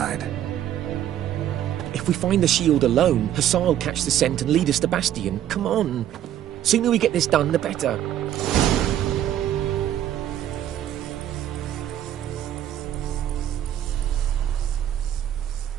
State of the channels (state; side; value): quieter; left; 11.3 dB